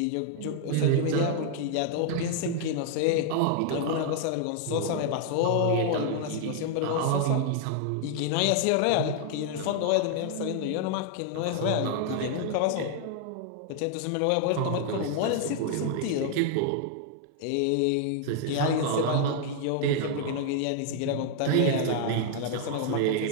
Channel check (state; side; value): different; both; correlation 0.00